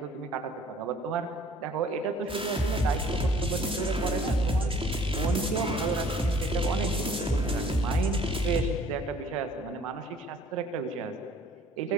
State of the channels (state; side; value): normal; both; correlation 0.54